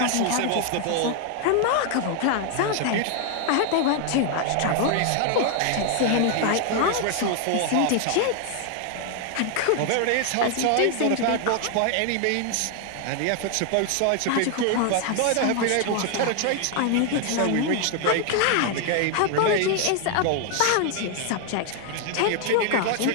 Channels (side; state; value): both; different; correlation 0.00